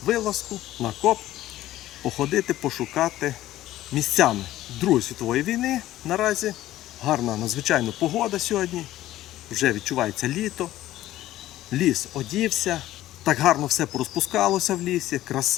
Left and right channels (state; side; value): quieter; right; 14.6 dB